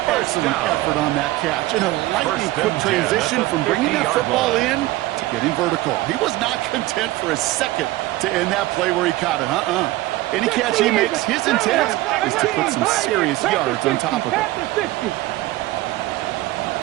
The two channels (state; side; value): quieter; left; 17.8 dB